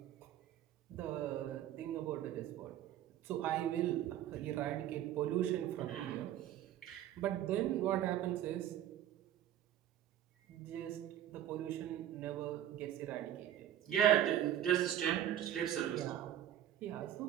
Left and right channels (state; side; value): quieter; left; 11.5 dB